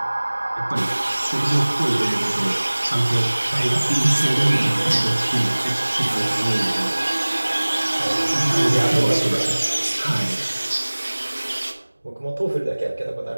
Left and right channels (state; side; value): inverted; both; correlation -1.00